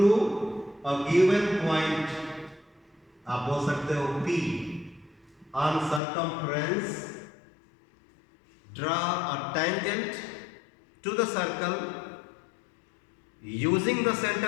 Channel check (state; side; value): drops out; right; at 6.0 s